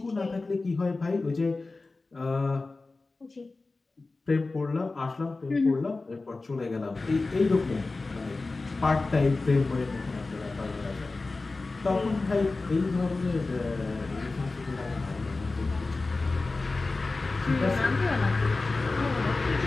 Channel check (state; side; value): quieter; right; 3.5 dB